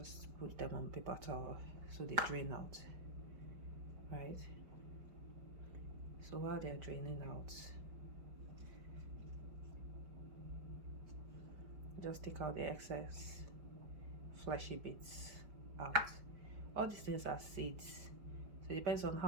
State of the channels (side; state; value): left; late; 5.2 ms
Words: put them on paper towel so they drain out, right? So while they're draining out, just take out the excess fleshy bits out. All these things are seeds, so it depends on